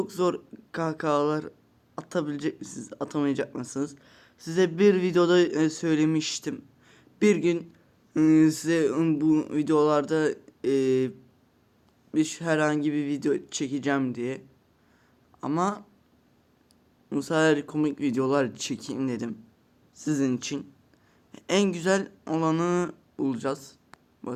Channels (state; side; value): identical; both; correlation 1.00